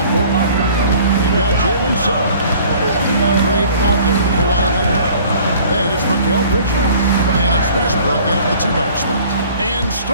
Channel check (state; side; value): inverted; both; correlation -0.51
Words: 4th. You've got Jalen Suggs. Andre out there, Kawhi Leonard. Then it's Mikal Bridges. And it's Westbrook in at the 2-guard spot. And